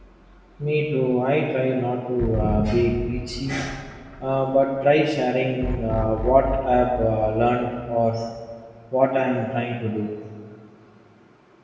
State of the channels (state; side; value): identical; both; correlation 1.00